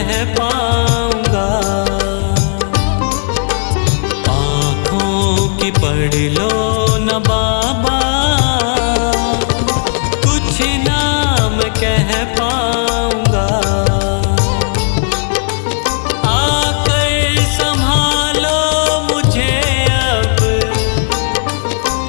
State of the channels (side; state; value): right; silent; digital silence